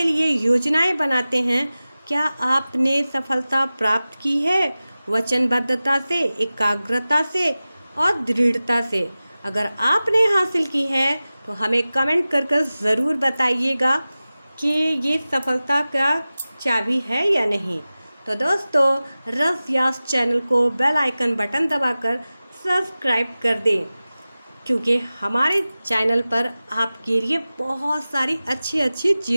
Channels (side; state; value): both; inverted; correlation -0.96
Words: लिए योजनाएं बनाते हैं? क्या आपने सफलता प्राप्त की है वचनबद्धता से, एकाग्रता से और दृढ़ता से? अगर आपने हासिल की है तो हमें कमेंट कर ज़रूर बताइएगा कि ये सफलता का चाबी है या नहीं। तो दोस्तों रस यास चैनल को बेल आइकन बटन दबाकर सब्सक्राइब कर दें। क्योंकि हमारे चैनल पर आपके लिए बहुत सारी अच्छी अच्छी